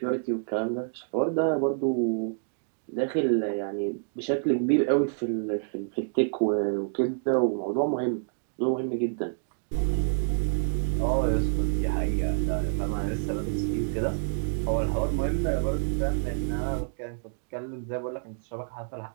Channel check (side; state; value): left; silent; digital silence